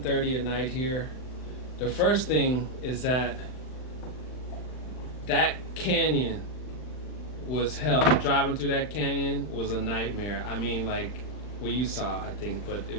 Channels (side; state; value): right; late; 39 ms